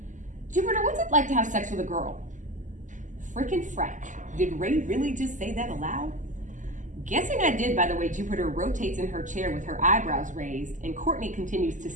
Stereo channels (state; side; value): late; left; 0.37 ms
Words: Jupiter, what's it like to have sex with a girl? Frickin' frack. Did Ray really just say that aloud? Guessing I did by the way Jupiter rotates in her chair with her eyebrows raised, and Courtney continues to